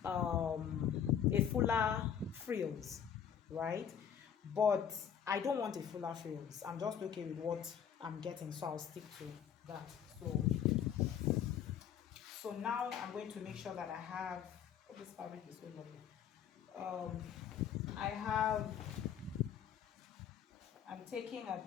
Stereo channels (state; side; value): quieter; right; 8.6 dB